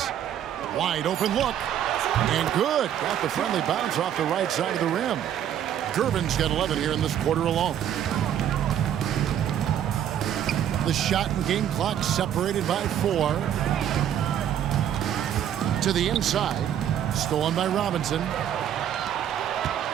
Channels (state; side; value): quieter; left; 10.1 dB